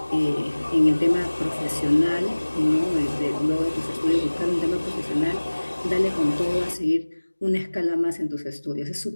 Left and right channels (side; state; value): both; inverted; correlation -1.00